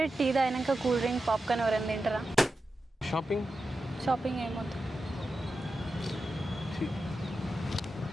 tea తాగినాక కూల్ డ్రింక్, పాప్కార్న్ ఎవరైనా తింటారా? షాపింగ్ ఏమవుతుంది?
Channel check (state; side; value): normal; both; correlation 0.91